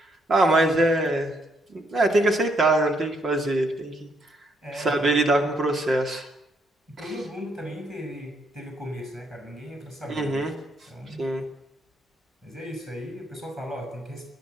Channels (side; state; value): both; normal; correlation 0.73